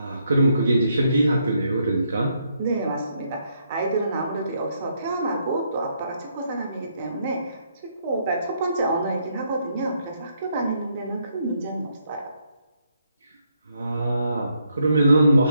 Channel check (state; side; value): inverted; both; correlation -0.75